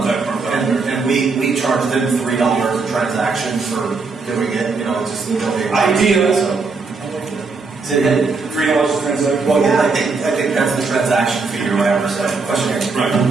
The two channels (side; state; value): left; quieter; 4.3 dB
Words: And we charge them $3 a transaction for doing it. Just the Building. Idea. Is it $3 a transaction? Well, yeah, I think that's the transaction fee or whatever. So, question here. Right.